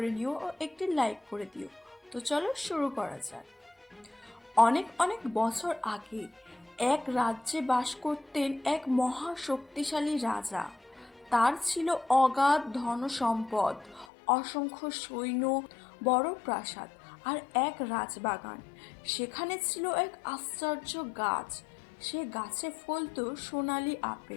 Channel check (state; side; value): drops out; right; at 14.1 s